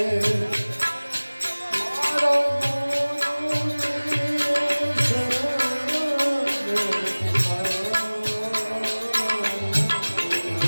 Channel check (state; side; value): inverted; both; correlation -1.00